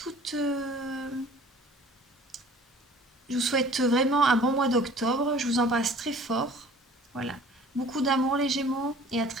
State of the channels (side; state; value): both; normal; correlation 0.49